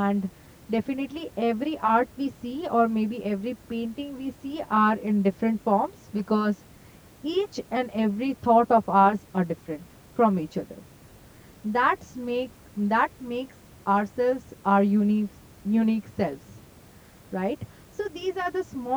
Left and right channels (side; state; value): both; identical; correlation 1.00